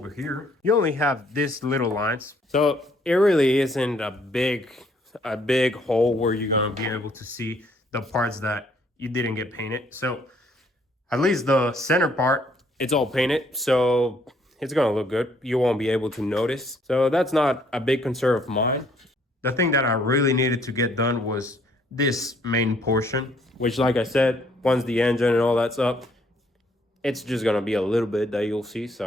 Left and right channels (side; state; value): both; normal; correlation 0.65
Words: here, you only have this little lines. So it really isn't a big hole where you're gonna be able to see the parts that you didn't get painted. So at least the center part, it's all painted. So it's gonna look good. You won't be able to notice. So that's not a big concern of mine. The thing that I really needed to get done was this main portion, which, like I said, once the engine and all that's up, it's just gonna be a little bit that you'll see.